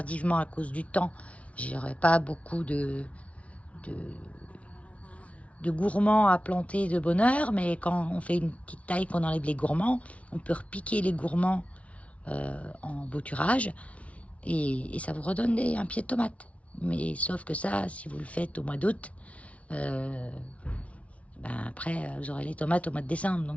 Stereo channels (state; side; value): late; right; 0.064 ms